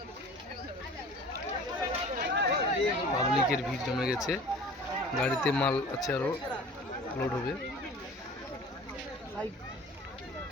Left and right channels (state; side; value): normal; both; correlation 0.44